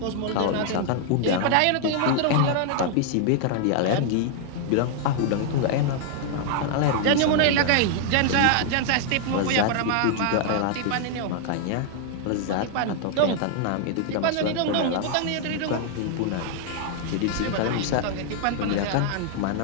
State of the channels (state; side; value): different; both; correlation 0.00